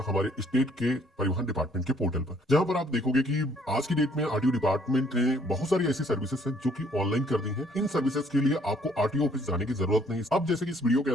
हमारे स्टेट के परिवहन डिपार्टमेंट के पोर्टल पर, जहां पर आप देखोगे कि आज की डेट में आरटीओ डिपार्टमेंट ने बहुत सारी ऐसी सर्विसेज हैं जो कि ऑनलाइन कर दी हैं। इन सर्विसेज के लिए आपको आरटीओ ऑफिस जाने की जरूरत नहीं। अब जैसे कि इस वीडियो के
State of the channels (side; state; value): both; normal; correlation 0.63